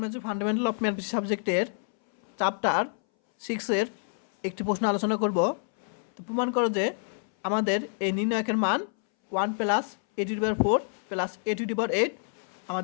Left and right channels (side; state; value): right; silent; 59 dB below the other